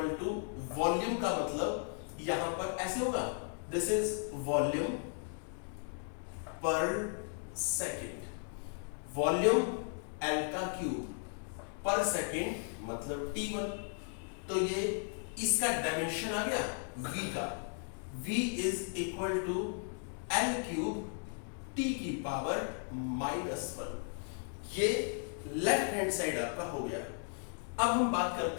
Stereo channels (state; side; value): silent; right; 54 dB below the other